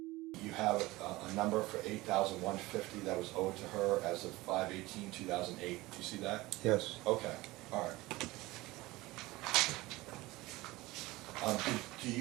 you have a number for $8,150 that was owed to her as of 5/18/2008. Do you see that? Yes. Okay, all right.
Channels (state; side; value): quieter; left; 19.9 dB